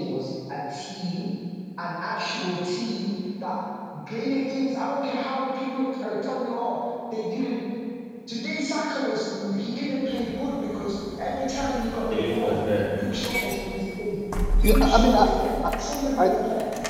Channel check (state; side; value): identical; both; correlation 1.00